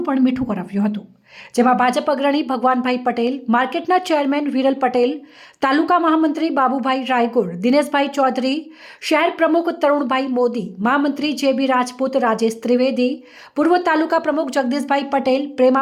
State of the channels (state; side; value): identical; both; correlation 1.00